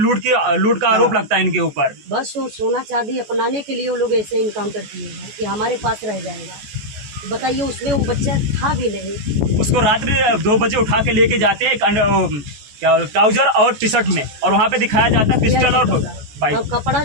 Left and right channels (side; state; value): left; late; 14 ms